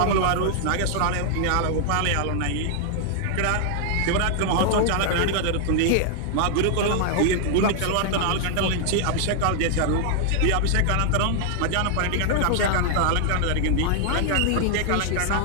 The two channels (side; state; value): both; different; correlation 0.00